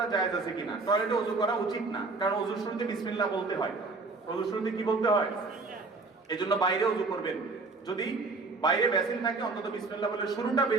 জায়েজ আছে কিনা? টয়লেটে ওযু করা উচিত না, কারণ ওযুর শুরুতে বিসমিল্লাহ বলতে হয়। ওযুর শুরুতে কি বলতে হয়? এজন্য বাইরে ওযু করবেন। যদি বাইরে বেসিন থাকে অন্তত বিসমিল্লাহ বলে শুরুটা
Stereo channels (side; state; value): left; quieter; 3.8 dB